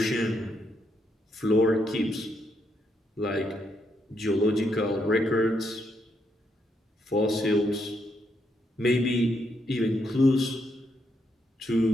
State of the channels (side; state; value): both; normal; correlation 0.78